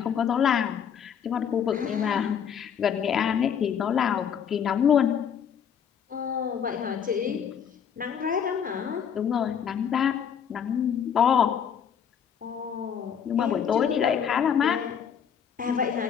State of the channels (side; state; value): right; quieter; 7.9 dB